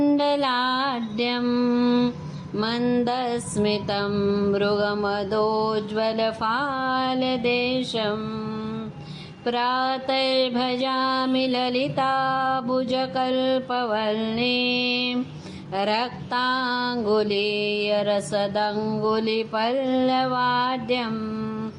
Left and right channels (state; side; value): identical; both; correlation 1.00